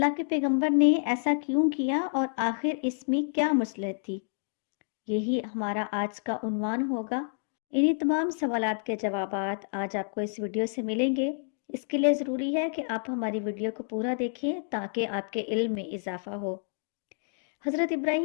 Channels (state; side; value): silent; right; digital silence